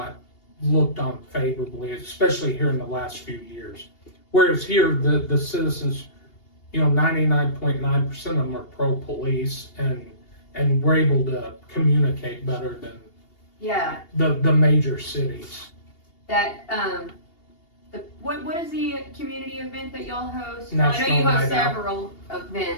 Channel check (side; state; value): right; late; 2.8 ms